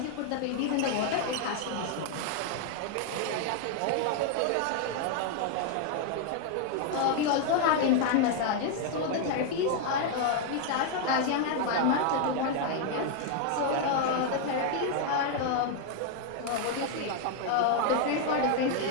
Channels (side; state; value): both; different; correlation 0.00